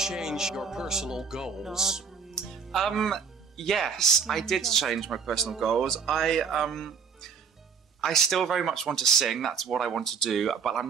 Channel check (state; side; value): quieter; left; 6.1 dB